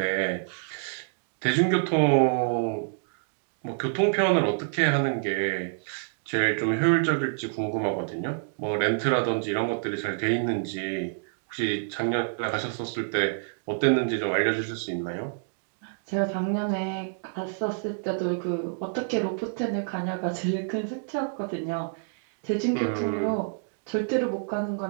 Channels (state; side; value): silent; left; digital silence